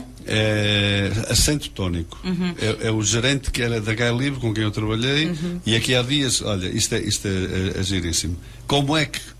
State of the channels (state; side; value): identical; both; correlation 1.00